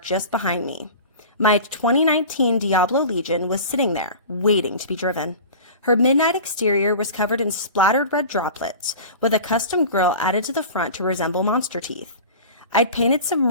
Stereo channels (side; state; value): both; inverted; correlation -0.37